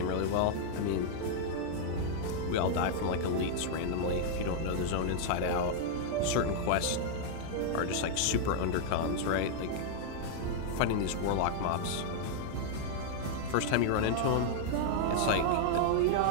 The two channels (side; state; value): both; different; correlation -0.01